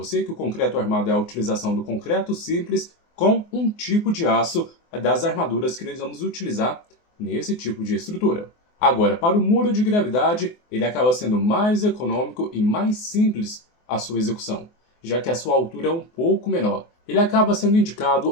que o concreto armado é a utilização do concreto simples com um tipo de aço das armaduras que nós vamos utilizar nesse tipo de estrutura. Agora, para o muro de gravidade, ele acaba sendo mais econômico e mais simples a sua execução, já que a sua altura é um pouco menor. Ele acaba sendo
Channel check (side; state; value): right; late; 24 ms